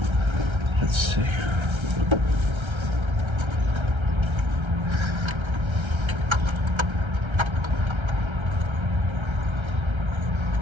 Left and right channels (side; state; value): left; late; 1.3 ms